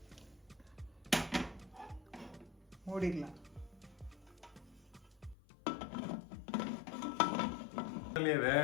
மூடிடலாம். கடலையை வேக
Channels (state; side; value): drops out; right; at 5.4 s